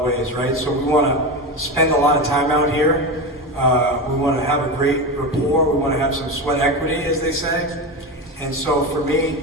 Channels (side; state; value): both; normal; correlation 0.20